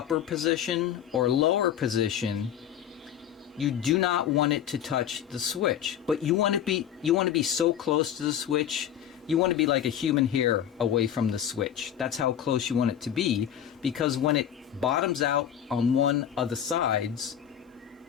position or lower position, you do not want it to touch the switch. But you want to be so close to the switch, you want to be like a human hair away from the switch. That's how close you want it to be, because when it bottoms out on one of the sides,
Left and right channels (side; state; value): right; quieter; 9.8 dB